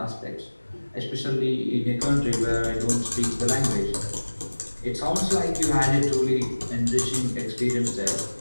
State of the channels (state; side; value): inverted; both; correlation -1.00